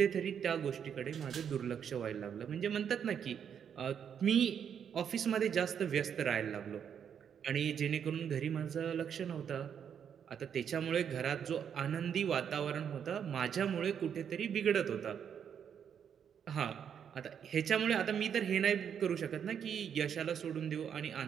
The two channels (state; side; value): quieter; left; 8.1 dB